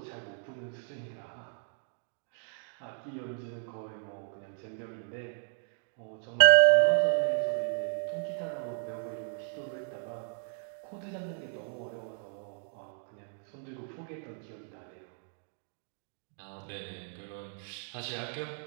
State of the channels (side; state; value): left; silent; 55 dB below the other